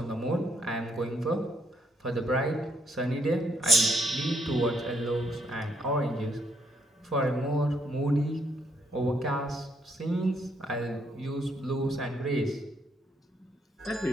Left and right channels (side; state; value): both; normal; correlation 0.72